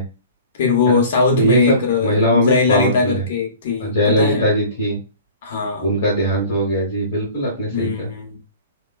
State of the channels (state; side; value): inverted; both; correlation -0.43